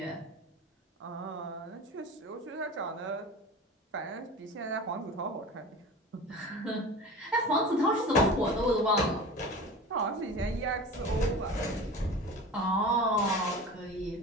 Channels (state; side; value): normal; both; correlation 0.34